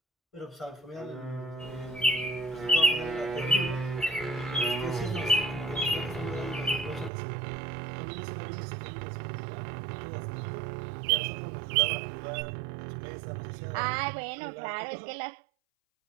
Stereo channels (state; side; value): drops out; left; at 7.1 s